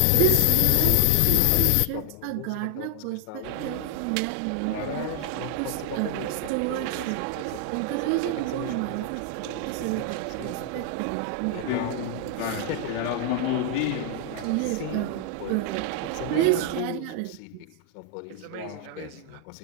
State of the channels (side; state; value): both; different; correlation 0.00